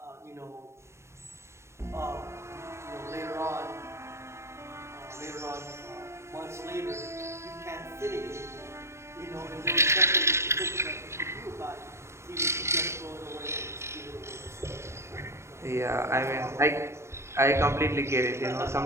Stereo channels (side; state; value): left; late; 0.13 ms